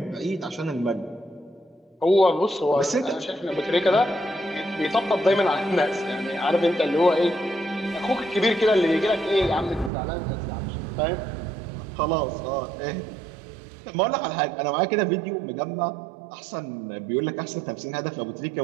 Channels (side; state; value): left; drops out; at 9.9 s